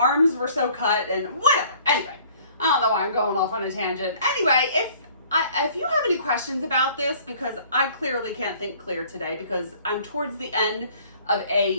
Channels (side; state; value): both; inverted; correlation -0.54